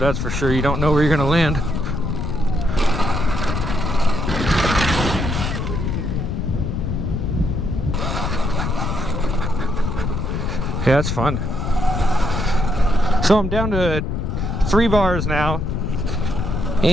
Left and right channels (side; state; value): left; noise; rumble, 1 dB below the sound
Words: for sure. You don't know where you're gonna land. Yeah, it's fun. So I'm down to 3 bars now,